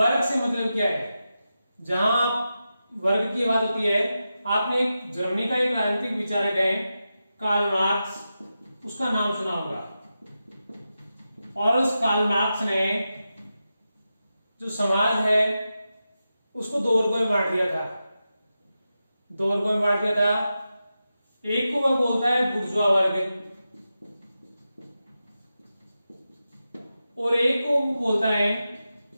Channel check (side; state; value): both; inverted; correlation -0.91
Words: से मतलब क्या है, जहां वर्ग की बात होती है, आपने एक जर्मनी का एक राजनीतिक विचारक है कार्ल मार्क्स, उसका नाम सुना होगा, और उस कार्ल मार्क्स ने जो समाज है उसको 2 वर्गों में बांट दिया था, 2 वर्गों में बांट दिया था। एक को वह बोलता है बुर्जुआ वर्ग, और एक को बोलता है